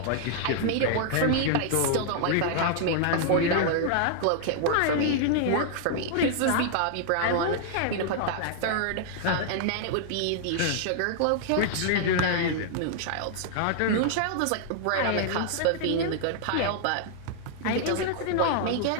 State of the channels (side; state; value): both; different; correlation -0.01